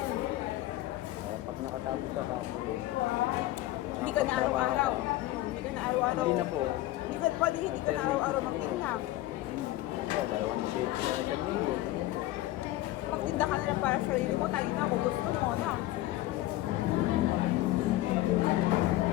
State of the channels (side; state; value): right; quieter; 16.0 dB